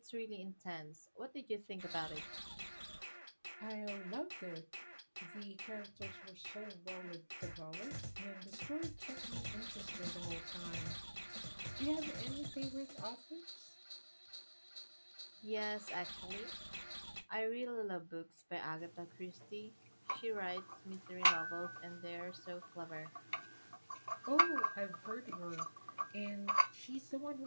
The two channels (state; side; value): inverted; both; correlation -1.00